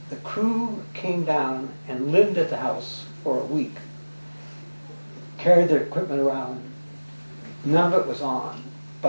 crew came down and lived at the house for a week, carried their equipment around. None of it was on,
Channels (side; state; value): both; inverted; correlation -1.00